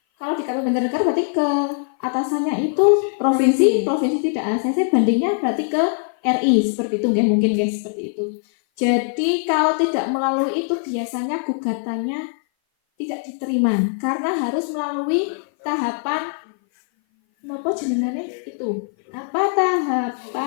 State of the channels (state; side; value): silent; right; 58 dB below the other